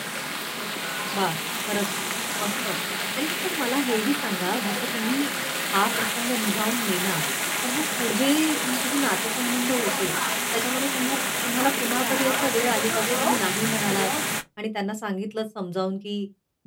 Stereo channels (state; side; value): identical; both; correlation 1.00